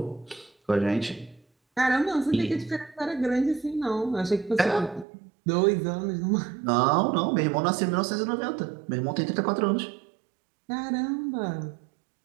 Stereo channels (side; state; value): left; drops out; at 5.1 s